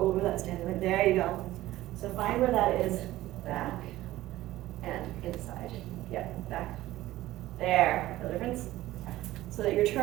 that standing leg. There you go. So find where that is. Back and inside. Yep, back. There. No difference? So that your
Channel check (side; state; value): left; quieter; 16.0 dB